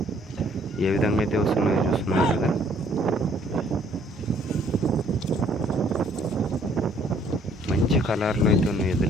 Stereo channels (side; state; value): both; normal; correlation 0.61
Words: ఏ విధంగా అయితే వస్తున్నాయో చూస్తున్నారు కదా. మంచి కలర్లు అయితే ఉన్నాయి